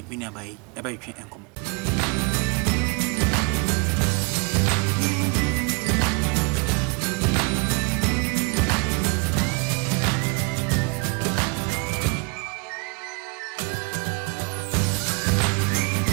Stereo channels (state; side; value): quieter; left; 31.1 dB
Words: nua bai e ba twen enkomo.